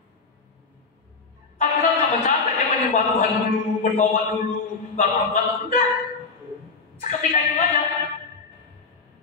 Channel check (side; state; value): right; quieter; 4.4 dB